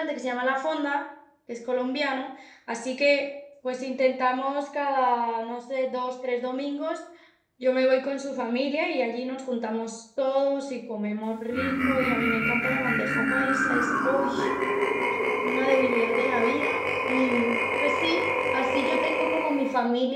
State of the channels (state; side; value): identical; both; correlation 1.00